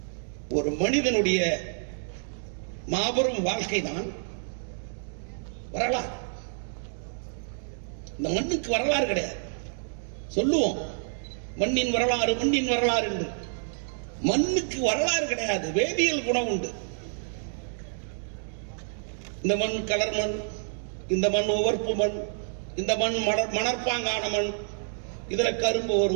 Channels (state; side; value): silent; left; digital silence